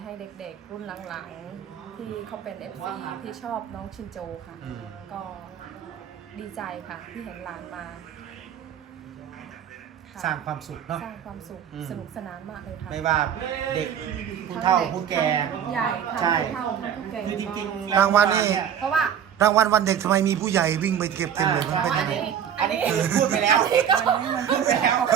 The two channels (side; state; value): left; quieter; 8.8 dB